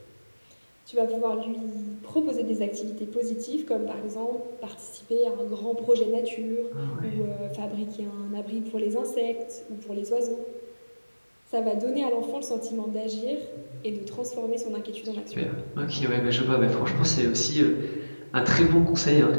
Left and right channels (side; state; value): both; inverted; correlation -1.00